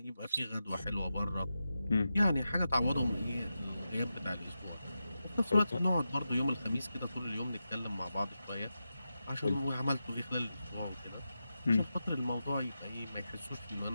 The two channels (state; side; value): inverted; both; correlation -0.90